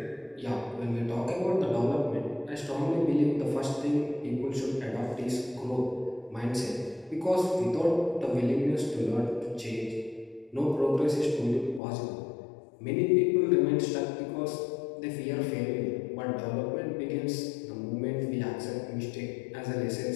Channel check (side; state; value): right; drops out; at 11.8 s